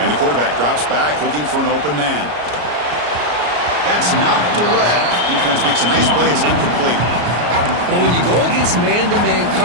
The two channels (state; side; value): late; left; 34 ms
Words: the quarterback drops back looking for an open man. That's knocked away. Defense makes a nice play. It's incomplete. Well, when you go against man-to-man